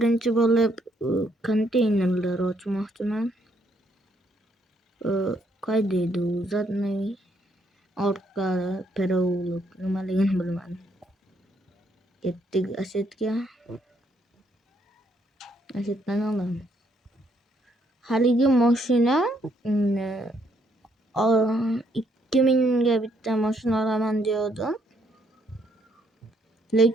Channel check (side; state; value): both; normal; correlation 0.72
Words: bo'lib konteynerlar ochmoqchiman. Qayda edi u zatni orqa perovluk nimaligini bilmadim. Ketdik Asetga. Asetdan olamiz. Haligi mashina 2000 ga bitta mashina olaman degandim.